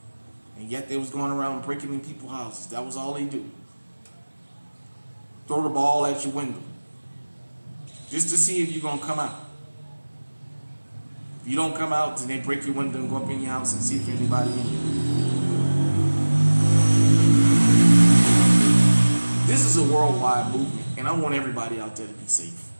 And yet they was going around breaking in people's houses. That was all they do. Throw the ball at your window. Just to see if you're going to come out. If you don't come out, then they break your window and go up in your house and see if anybody in there. This is a worldwide movement, and I want everybody out there to be safe.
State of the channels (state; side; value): inverted; both; correlation -1.00